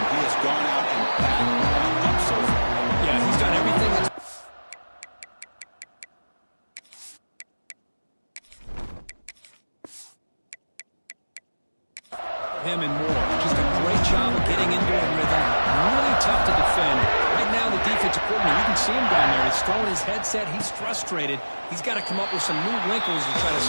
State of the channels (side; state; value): both; inverted; correlation -1.00